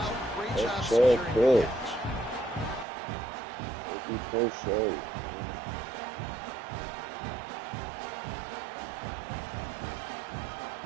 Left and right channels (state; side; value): drops out; left; at 2.9 s